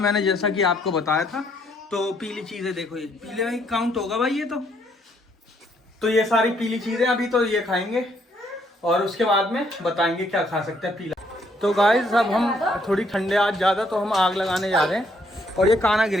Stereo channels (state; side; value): normal; both; correlation 0.70